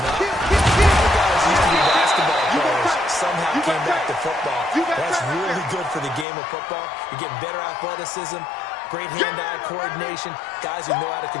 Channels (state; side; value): drops out; right; at 6.2 s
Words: up. All guys used to be basketball players. Somehow came back to football. That's really good for the game of football. You're getting better athleticism, great hand-eye coordination, guys who know how to